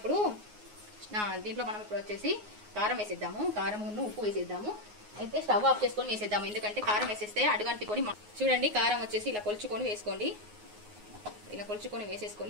వచ్చేసి కారం వేసేద్దాము, కారమును ఉప్పు వేసేద్దాము. అయితే స్టవ్ ఆఫ్ చేసుకొని వేసేద్దాము, ఎందుకంటే కారం వేసేస్తే అడుగంటుకొని. చూడండి కారం వచ్చేసి ఇలా కొలుచుకొని వేసుకోండి, ఇలా కొలుచుకొని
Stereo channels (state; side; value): late; left; 9.5 ms